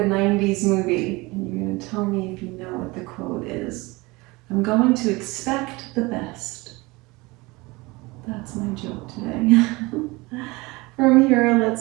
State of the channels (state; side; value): quieter; left; 23.4 dB